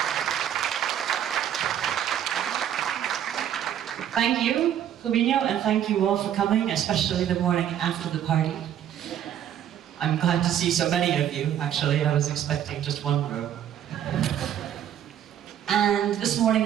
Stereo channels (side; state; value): left; quieter; 10.3 dB